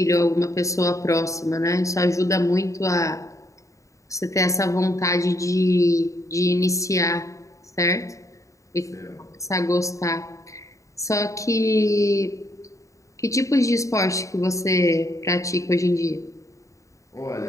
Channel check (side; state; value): right; late; 0.15 ms